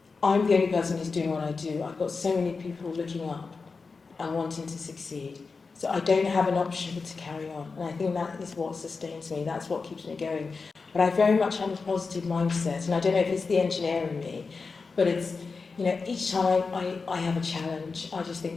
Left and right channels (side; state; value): right; quieter; 4.5 dB